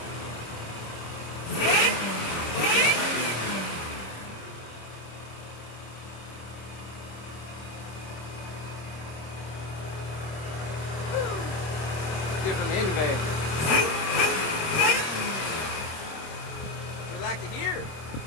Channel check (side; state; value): right; late; 26 ms